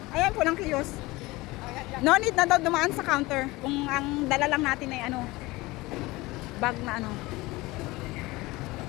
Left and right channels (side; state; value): right; quieter; 21.0 dB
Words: ayan pulang kiosk. No need na daw dumaan sa counter kung ang dala lang natin ay ano, bag na ano.